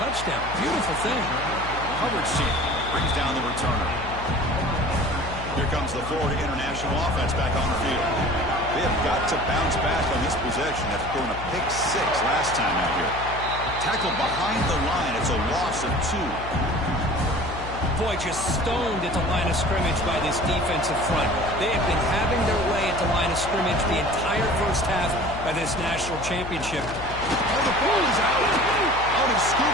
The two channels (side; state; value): left; noise; hum, 10 dB below the sound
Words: Beautiful thing. Coverage team brings down the returner. Here comes the Florida International offense back on the field. They have got to bounce back on this possession after throwing a pick 6 last time out here. Tackled behind the line. It's a loss of 2. Boy, just stoned at the line of scrimmage by this defensive front. They have been having their way at the line of scrimmage the entire first half of this national championship. Oh, the ball is out. Out is